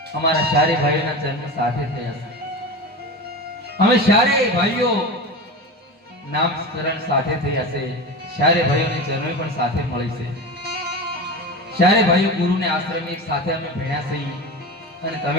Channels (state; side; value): normal; both; correlation 0.27